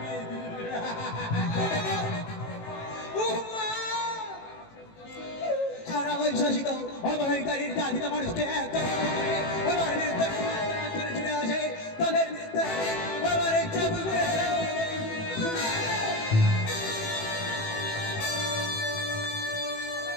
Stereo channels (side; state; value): right; late; 18 ms